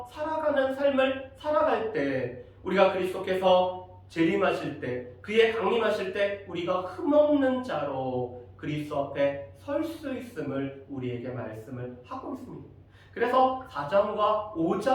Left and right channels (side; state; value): both; identical; correlation 1.00